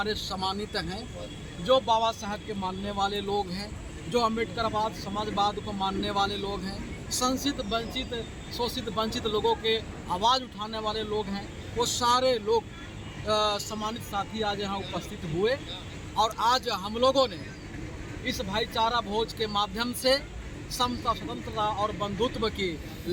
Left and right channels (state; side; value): identical; both; correlation 1.00